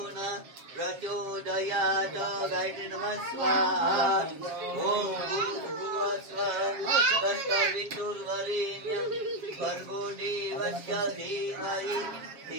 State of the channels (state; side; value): late; left; 7.3 ms